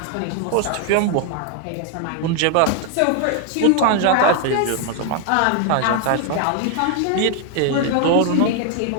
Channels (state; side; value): different; both; correlation 0.00